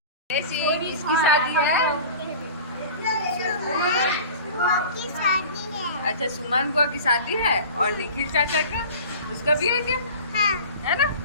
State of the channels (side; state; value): both; inverted; correlation -0.39